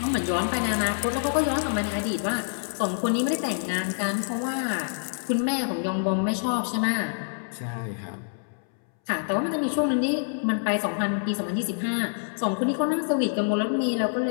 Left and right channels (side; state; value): right; silent; 61 dB below the other